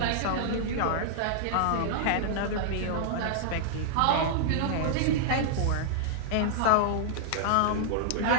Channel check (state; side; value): different; both; correlation -0.01